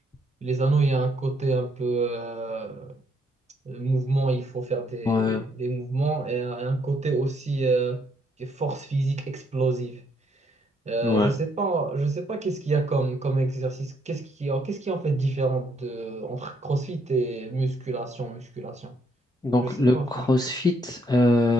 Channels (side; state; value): both; normal; correlation 0.71